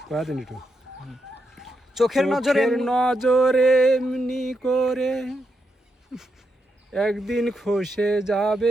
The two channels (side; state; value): both; normal; correlation 0.83